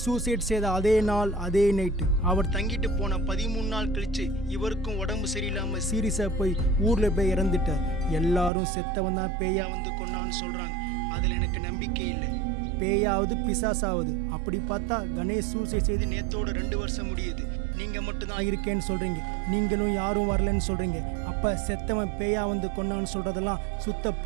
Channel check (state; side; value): drops out; left; at 8.5 s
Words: சூசைட் செய்த அதே நாள் அதே நைட்டு. அவர் தங்கிட்டு போன 13 நாள் கழிச்சு இவருக்கும் உடம்பு சரியில்லாமல் சீரியஸாக போய் ஊரில் போய் இறந்துட்டார். எல்லாரும் செத்தவன் தான் பேயா வந்து கொண்டான்னு சொல்கிறாங்க. அதில் எனக்கு நம்பிக்கை இல்லை. பேயாவது பிசாசாவது. அப்படி பார்த்தா கணேஷ் சூசைட் செய்து நேத்தோட 2 வருஷம் முடியுது. நீங்கள் மட்டும்தான் இருக்கேன்னு சொல்கிறீங்க, நீங்களும் யாரும் வரலன்னு சொல்கிறீங்க. அப்போ செத்தவன் பேயா வந்து கொண்டான்னு சொல்கிறதெல்லாம் சுத்த